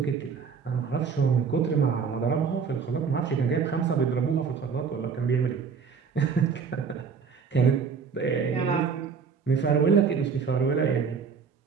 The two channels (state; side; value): quieter; left; 5.9 dB